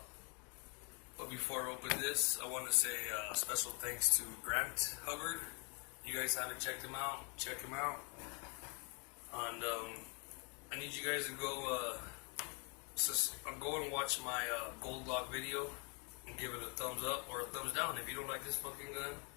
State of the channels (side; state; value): right; quieter; 34.3 dB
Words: But before I open this, I want to say special thanks to Grant Hubbard. You guys haven't checked him out, check him out. And I need you guys to go and watch my gold lock video and give it a thumbs up or a thumbs down. If you don't like this fucking gun,